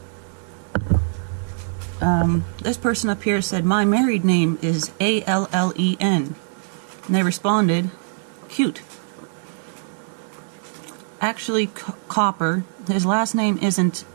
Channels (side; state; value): left; silent; 62 dB below the other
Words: This person up here said, "My married name is A-L-L-E-N." And they responded, "Cute." Actually, Copper, his last name isn't